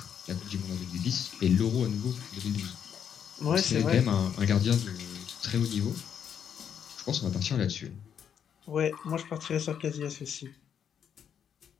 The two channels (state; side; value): quieter; right; 8.3 dB